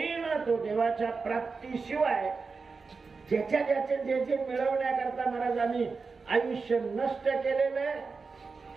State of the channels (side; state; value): left; quieter; 4.6 dB